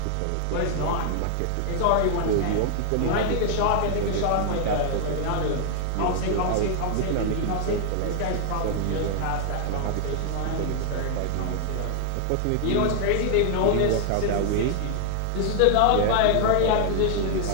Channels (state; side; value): different; both; correlation 0.00